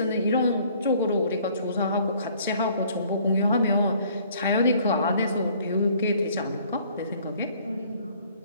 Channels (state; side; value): inverted; both; correlation -0.58